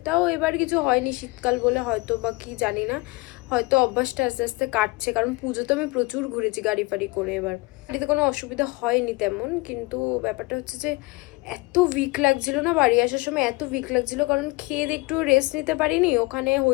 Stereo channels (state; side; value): quieter; right; 24.2 dB